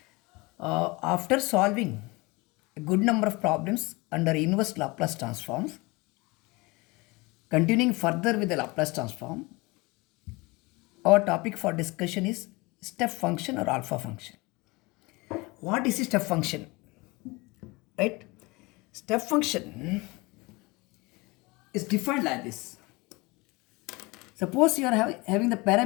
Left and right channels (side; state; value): right; quieter; 24.2 dB